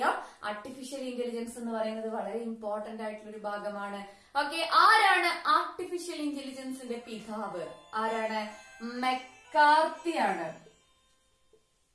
ആർട്ടിഫിഷ്യൽ ഇന്റലിജൻസ് എന്ന് പറയുന്നത് വളരെ ഇമ്പോർട്ടന്റ് ആയിട്ടുള്ള ഒരു ഭാഗമാണ്. ഓക്കെ, ആരാണ് ആർട്ടിഫിഷ്യൽ ഇന്റലിജൻസിന്റെ പിതാവ്? ആരാണ്? മെക്കാർത്തി ആണ്.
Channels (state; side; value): identical; both; correlation 1.00